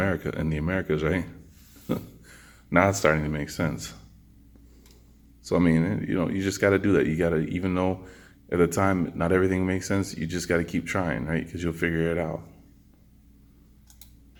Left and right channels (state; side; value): identical; both; correlation 1.00